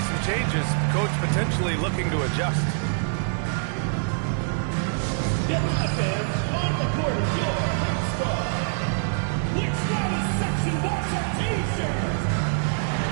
changes. Coach potentially looking to adjust.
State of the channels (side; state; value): left; silent; 57 dB below the other